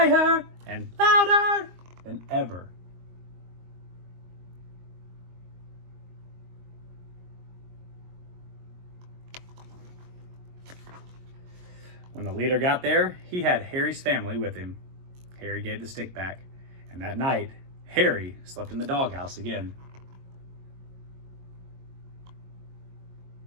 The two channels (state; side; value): late; left; 22 ms